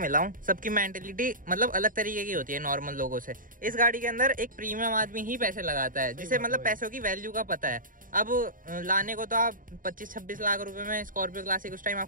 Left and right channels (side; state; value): left; late; 0.40 ms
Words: हूँ सबकी मेंटेलिटी मतलब अलग तरीके की होती है नॉर्मल लोगों से। इस गाड़ी के अंदर एक प्रीमियम आदमी ही पैसे लगाता है, जिसे मतलब पैसों की वैल्यू का पता है। अब लाने को तो आप 25-26 लाख रुपए में स्कॉर्पियो क्लासिक उस टाइम